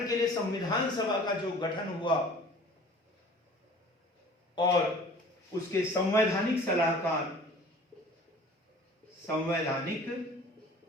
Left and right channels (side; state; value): both; normal; correlation 0.46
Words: के लिए संविधान सभा का जो गठन हुआ, और उसके संवैधानिक सलाहकार